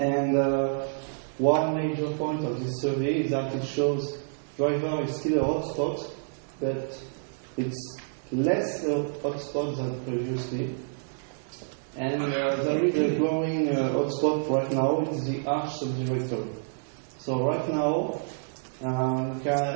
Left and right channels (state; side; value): silent; left; digital silence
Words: one major point of this survey is that it shows driver is still a hotspot, but it's less a hotspot than previously. And there is a growing hotspot right now, it's the arch subdirectory. So right now,